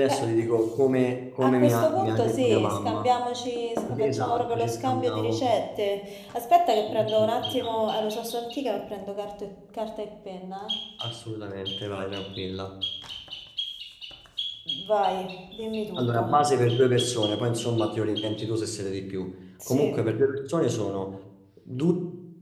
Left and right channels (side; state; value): both; identical; correlation 1.00